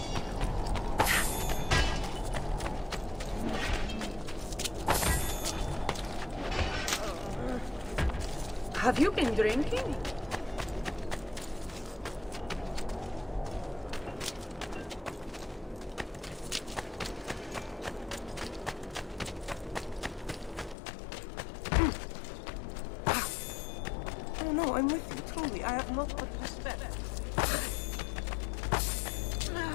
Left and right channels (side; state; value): right; drops out; at 20.8 s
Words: Have you been drinking? Oh no, I'm with you, truly. I have not but respect.